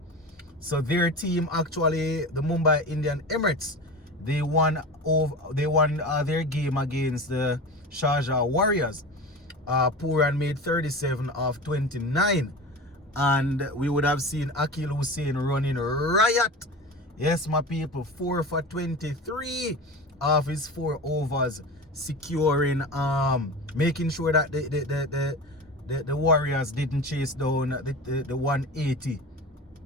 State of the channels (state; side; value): normal; both; correlation 0.30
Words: So their team actually, the Mumbai Indian Emirates, they won their game against the Sharjah Warriors. Pooran made 37 of 29, and we would have seen Akil Hussain running riot. Yes, my people, 4 for 23 of his 4 overs, securing, making sure that the Warriors didn't chase down the 180